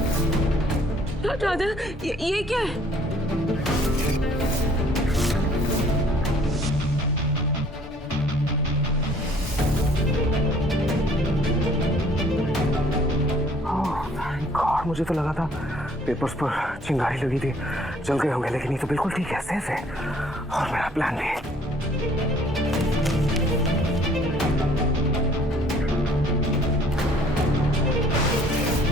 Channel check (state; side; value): normal; both; correlation 0.58